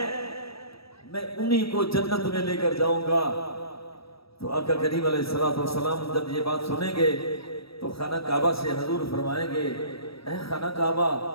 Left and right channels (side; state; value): right; late; 0.76 ms